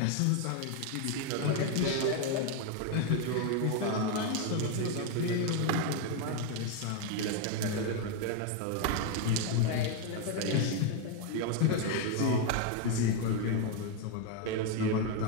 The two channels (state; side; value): different; both; correlation 0.01